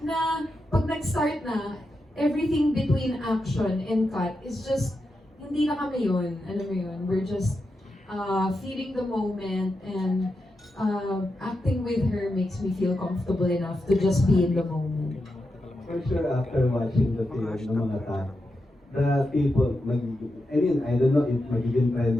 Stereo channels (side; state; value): both; normal; correlation 0.88